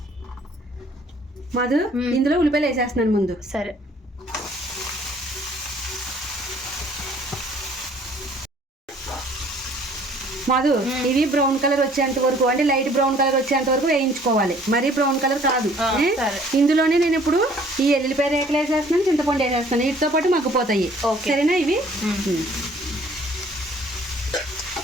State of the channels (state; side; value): normal; both; correlation 0.57